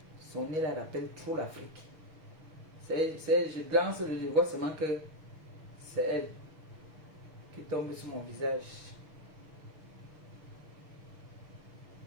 Son nez là rappelle trop l'Afrique. Je glance, je vois seulement que c'est elle qui tombe sur mon visage.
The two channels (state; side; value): late; left; 6.6 ms